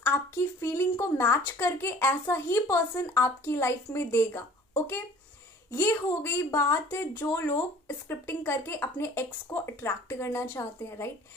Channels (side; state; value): both; normal; correlation 0.49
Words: आपकी फीलिंग को मैच करके ऐसा ही पर्सन आपकी लाइफ में देगा। ओके, ये हो गई बात जो लोग स्क्रिप्टिंग करके अपने एक्स को अट्रैक्ट करना चाहते हैं, राइट।